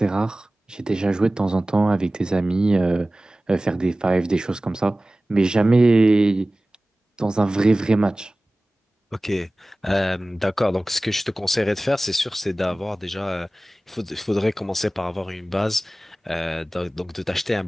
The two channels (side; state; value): both; normal; correlation 0.98